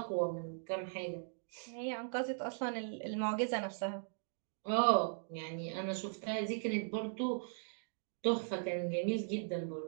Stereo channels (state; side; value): silent; left; digital silence